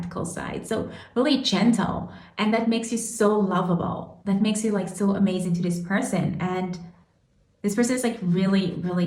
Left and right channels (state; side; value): identical; both; correlation 1.00